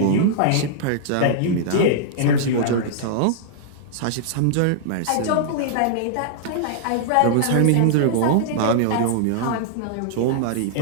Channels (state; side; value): different; both; correlation -0.01